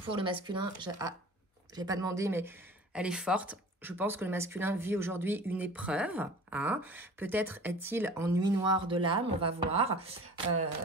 Pour le masculin, je n'ai pas demandé, mais elle est forte. Je pense que le masculin vit aujourd'hui une épreuve. Hein. Peut-être est-il en nuit noire de l'âme, on va voir.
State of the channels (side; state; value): both; normal; correlation 0.42